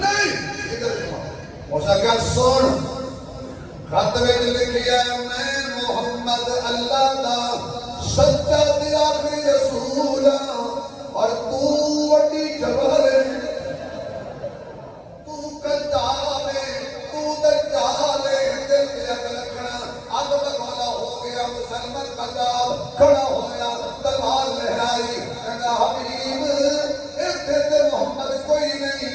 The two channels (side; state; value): both; identical; correlation 1.00